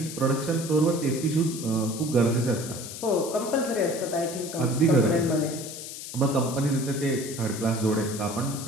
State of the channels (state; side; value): noise; left; hiss, 10 dB below the sound